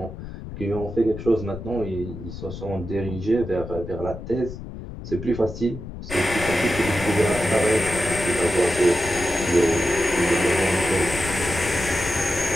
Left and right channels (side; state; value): left; noise; rumble, 10 dB below the sound